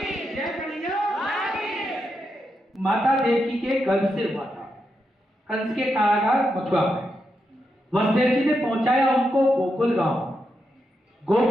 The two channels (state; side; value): normal; both; correlation 0.84